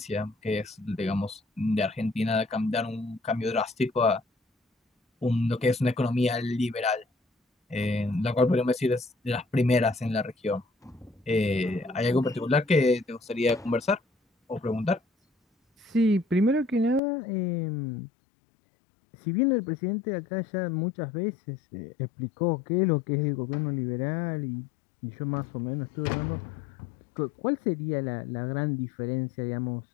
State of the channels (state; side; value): drops out; right; at 17.0 s